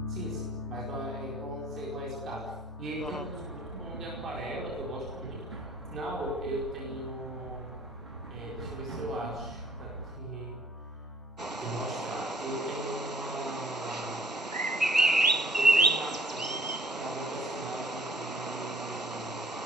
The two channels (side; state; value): both; normal; correlation 0.57